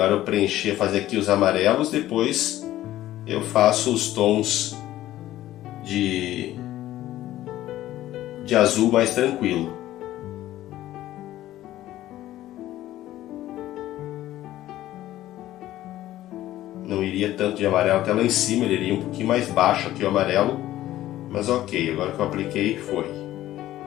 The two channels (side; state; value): right; quieter; 14.3 dB